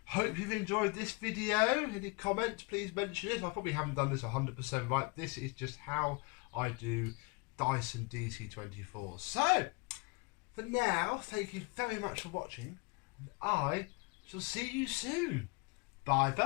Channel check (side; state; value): right; quieter; 29.6 dB